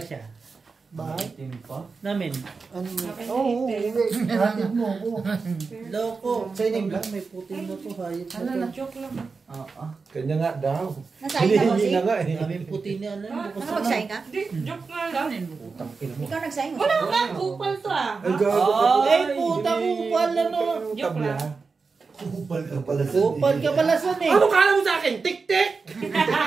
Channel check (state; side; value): quieter; left; 4.6 dB